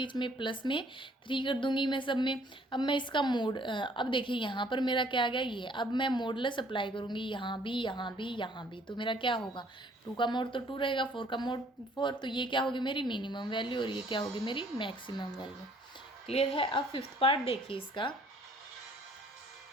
में प्लस में 3 कर दूंगी मैं सब में। अब मैं इसका मोड, अब देखिए यहाँ पर मेरा क्या आ गया ये, अब मैं मॉडुलस अप्लाई करूँगी यहाँ भी, यहाँ भी, यहाँ भी, तो मेरा क्या होगा, 2 का मोड तो 2 रहेगा, 4 का मोड 4, तो ये क्या होगी मेरी मिनिमम वैल्यू और ये क्या होगी मेरी मैक्सिमम वैल्यू। क्लियर है। अब फिफ्थ पार्ट देखिए इसका,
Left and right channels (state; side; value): normal; both; correlation 0.60